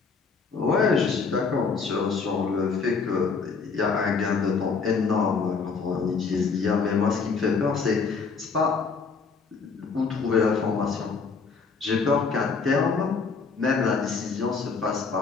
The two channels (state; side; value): quieter; right; 5.0 dB